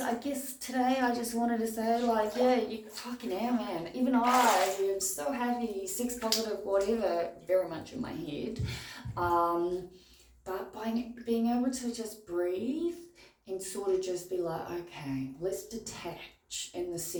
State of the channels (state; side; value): identical; both; correlation 1.00